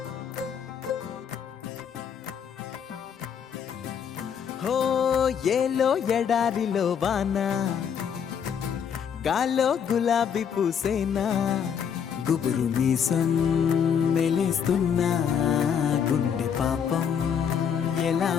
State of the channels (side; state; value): right; quieter; 7.7 dB